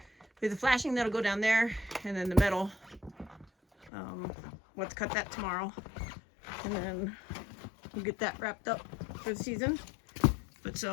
we have the flashing that'll go down there, and then the metal. We'll have to cut that tomorrow. And then we'll get that wrapped up for the season. But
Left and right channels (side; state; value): right; drops out; at 3.9 s